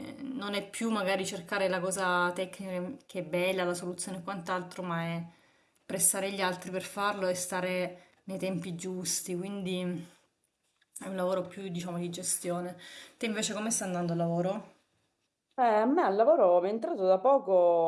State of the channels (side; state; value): both; identical; correlation 1.00